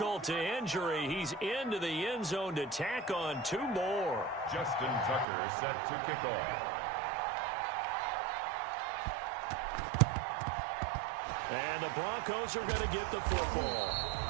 to injury. He's into the end zone to tack on 2 more. Justin Tucker set to kick off. And the Broncos are going to get the football.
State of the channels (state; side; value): drops out; left; at 5.2 s